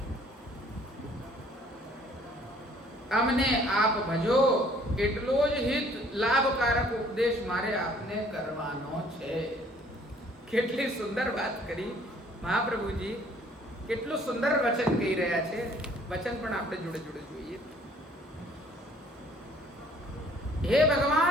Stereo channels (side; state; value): both; normal; correlation 0.58